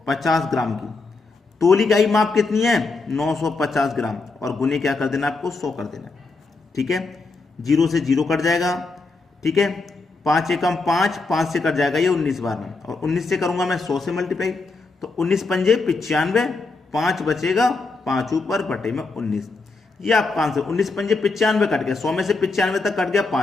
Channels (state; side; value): quieter; right; 3.8 dB